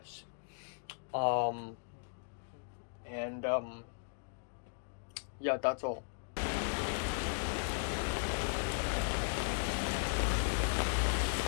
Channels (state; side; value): silent; right; digital silence